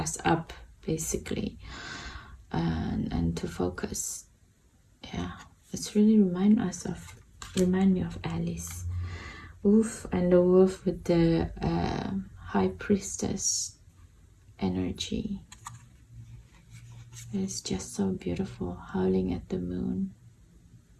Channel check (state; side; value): identical; both; correlation 1.00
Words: up, basically, and to focus. Yeah, it's really remind me of Alice. Wolf, and the wolf with the high priestess energy. It's just so beautiful, howling at the moon.